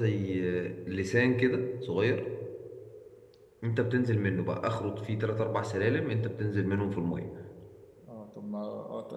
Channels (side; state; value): both; identical; correlation 1.00